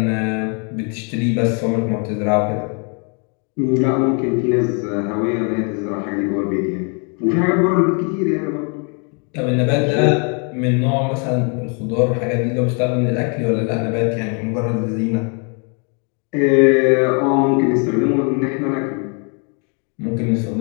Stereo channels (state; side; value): quieter; right; 38.1 dB